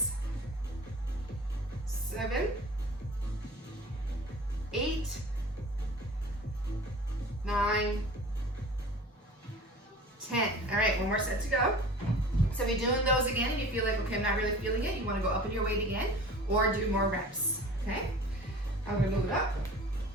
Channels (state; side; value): normal; both; correlation 0.42